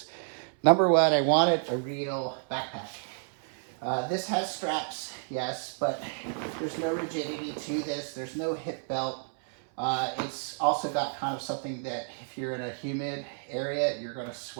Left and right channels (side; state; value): left; silent; 58 dB below the other